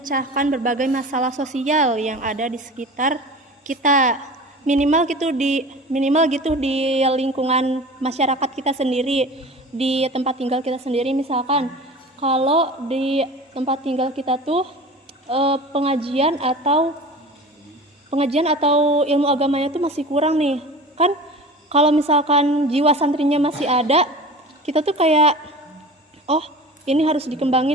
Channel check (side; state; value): both; normal; correlation 0.37